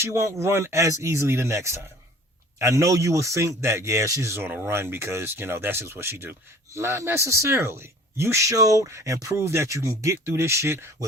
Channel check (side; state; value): both; normal; correlation 0.48